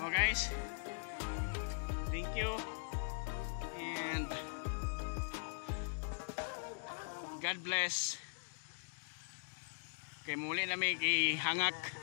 Oh guys. Thank you. And God bless. Kay muli namin ihangak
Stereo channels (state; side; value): silent; right; digital silence